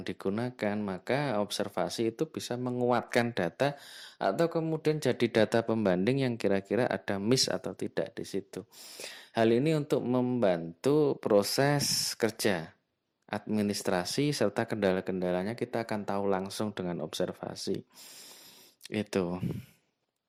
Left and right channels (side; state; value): both; identical; correlation 1.00